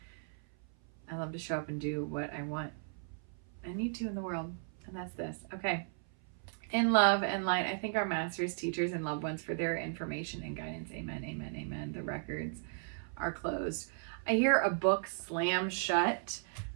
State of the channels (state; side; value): silent; left; 54 dB below the other